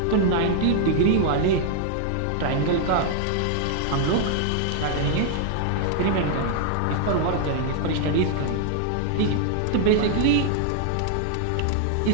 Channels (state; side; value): different; both; correlation 0.00